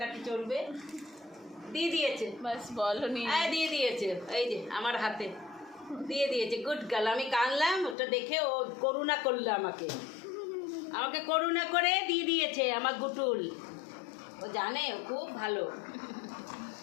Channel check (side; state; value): right; drops out; at 8.0 s